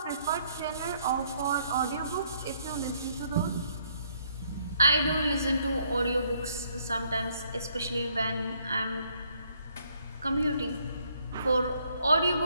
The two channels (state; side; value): inverted; both; correlation -0.69